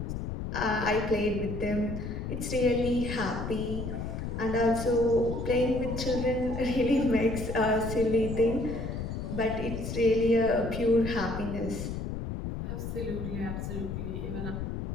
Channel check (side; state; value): left; noise; rumble, 5 dB below the sound